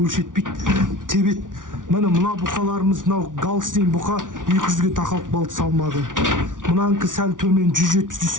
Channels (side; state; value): left; late; 0.88 ms